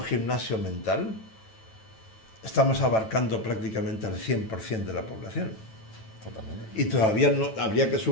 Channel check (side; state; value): right; late; 9.1 ms